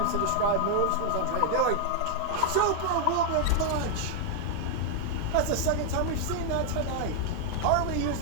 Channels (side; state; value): both; different; correlation 0.00